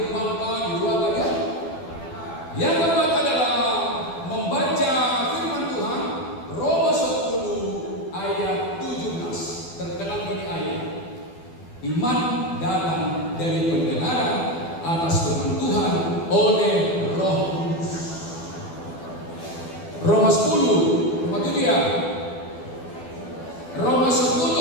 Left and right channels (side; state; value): right; late; 12 ms